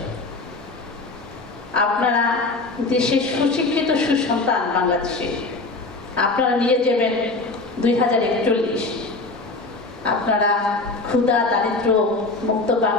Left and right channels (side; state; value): right; quieter; 3.4 dB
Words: আপনারা দেশের সুশিক্ষিত সুসন্তান বাংলাদেশে আপনারা নিয়ে যাবেন 2041। আপনারা ক্ষুধা দারিদ্র মুক্ত